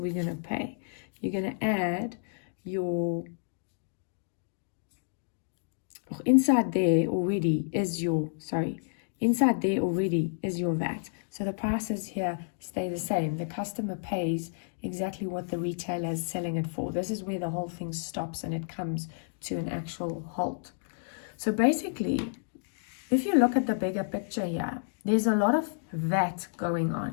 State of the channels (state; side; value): silent; right; digital silence